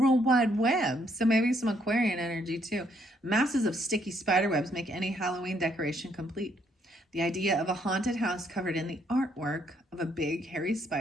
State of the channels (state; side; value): normal; both; correlation 0.70